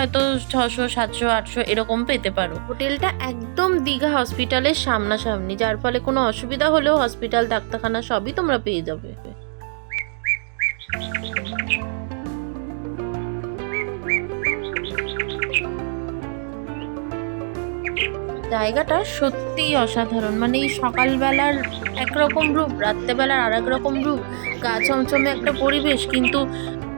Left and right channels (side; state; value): left; silent; 64 dB below the other